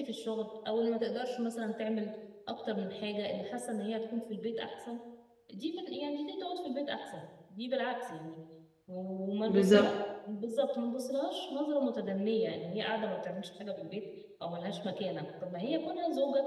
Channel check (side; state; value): both; identical; correlation 1.00